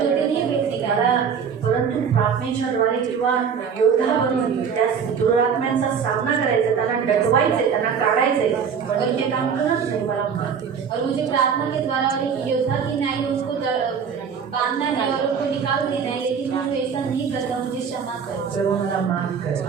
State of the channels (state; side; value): quieter; left; 6.7 dB